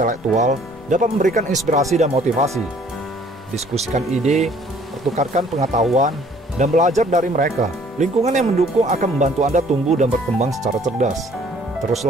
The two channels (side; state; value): both; normal; correlation 0.58